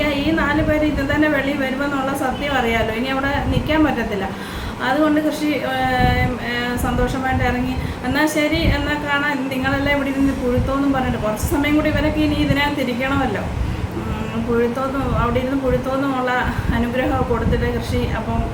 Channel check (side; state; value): both; identical; correlation 1.00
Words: ഈ 4 പേര് ഇത് തന്നെ വെളിയിൽ വരുമെന്നുള്ള സത്യം അറിയാമല്ലോ. ഇനി അവിടെ നിൽക്കാൻ പറ്റത്തില്ല. അതുകൊണ്ട് കൃഷി സന്തോഷമായിട്ട് ഇറങ്ങി. എന്നാൽ ശരി, എന്നാൽ കാണാൻ നിങ്ങളെല്ലാം ഇവിടെ ഇരുന്ന് പുഴുത്തോന്നും പറഞ്ഞിട്ട് കുറച്ച് സമയം കൂടി ഇവരൊക്കെ ഇനി ഇതിനകത്ത് ഇരിക്കണമല്ലോ. അവിടെ ഇരുന്ന് പുഴുത്തോന്നുമുള്ള അനുഗ്രഹം കൊടുത്തിട്ട് കൃഷി അപ്പം